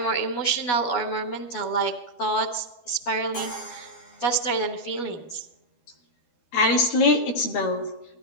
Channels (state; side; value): late; right; 12 ms